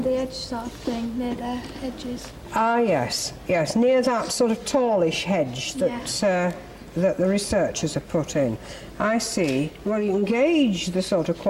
the edge sort of thing, near the hedges. Ah, yes, yes, near that sort of tallish hedge that that the researchers have put in. I see. Well, you can gauge the sort of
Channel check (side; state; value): both; identical; correlation 1.00